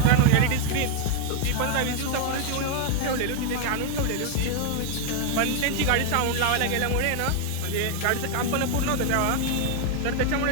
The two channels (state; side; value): different; both; correlation 0.00